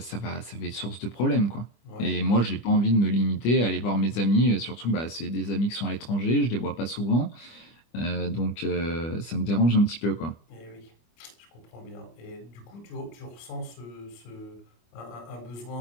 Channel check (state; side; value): late; right; 25 ms